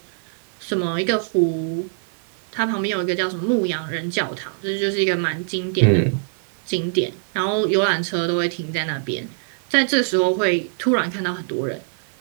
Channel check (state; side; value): silent; left; 64 dB below the other